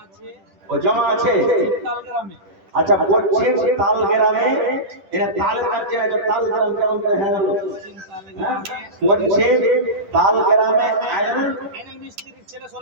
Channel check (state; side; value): late; left; 10 ms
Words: ও জমা আছে আচ্ছা বলছে তাল গ্রামে, এটা তাল কাটছে না, তাল গ্রাম কেমন করে হ্যাঁ বলছে তাল গ্রামে আইনুল মিস্ত্রির ছেলে